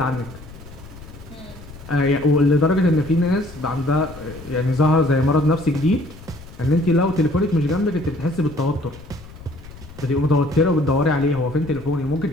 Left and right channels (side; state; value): left; noise; rumble, 17 dB below the sound